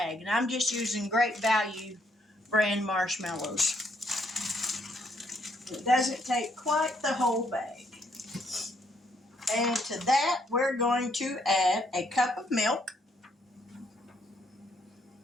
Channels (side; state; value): both; normal; correlation 0.71